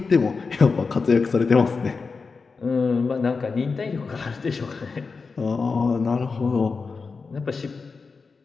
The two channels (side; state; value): right; quieter; 4.6 dB